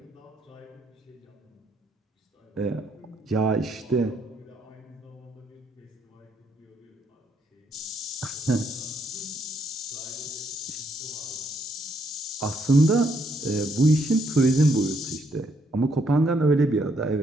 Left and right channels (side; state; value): both; normal; correlation 0.73